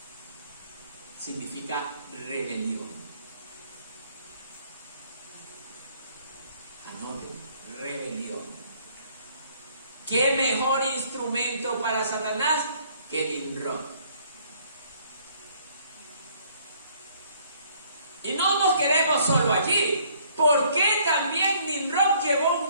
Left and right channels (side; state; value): both; inverted; correlation -0.61